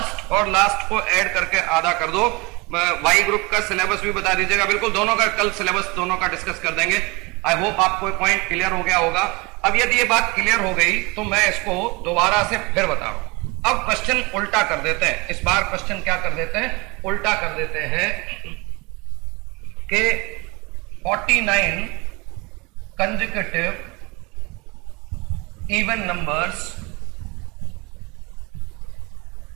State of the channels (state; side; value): quieter; left; 26.1 dB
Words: और लास्ट को ऐड करके आधा कर दो। वाई ग्रुप का सिलेबस भी बता दीजिएगा, बिल्कुल दोनों का कल सिलेबस दोनों का डिस्कस कर देंगे। आई होप आपको पॉइंट क्लियर हो गया होगा। अब यदि ये बात क्लियर हो गई तो मैं इसको दोबारा से फिर बता रहा हूं। अब क्वेश्चन उल्टा कर देते हैं। इस बार क्वेश्चन क्या कर देते हैं? उल्टा कर देते हैं कि 49 consecutive even numbers